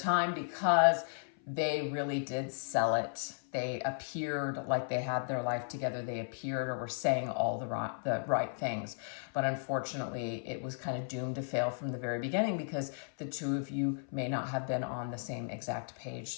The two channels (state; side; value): silent; right; 54 dB below the other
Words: because they really did sell it. They appeared like they had their life together. They appeared or were saying all the right things. But unfortunately, it was kind of doomed to fail from the very beginning because the two of you may not have been on the same exact page.